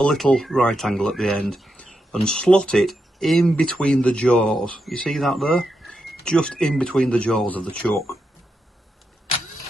little right angle at the end and slot it in between the jaws. You see that there? Just in between the jaws of the chuck.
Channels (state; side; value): normal; both; correlation 0.85